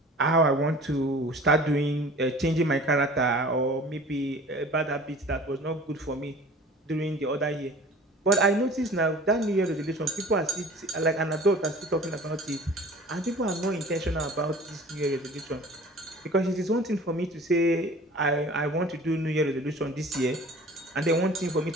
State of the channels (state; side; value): normal; both; correlation 0.44